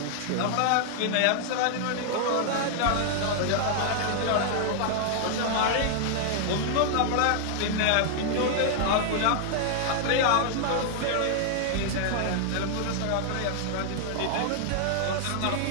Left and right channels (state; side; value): different; both; correlation -0.01